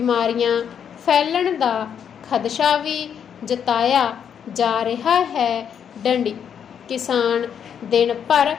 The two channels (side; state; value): right; quieter; 8.1 dB